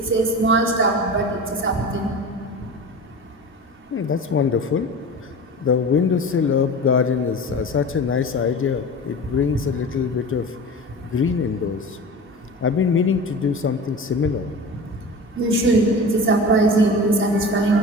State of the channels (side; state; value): both; normal; correlation 0.33